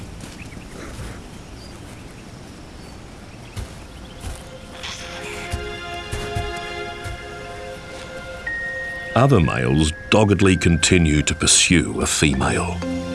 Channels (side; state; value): both; identical; correlation 1.00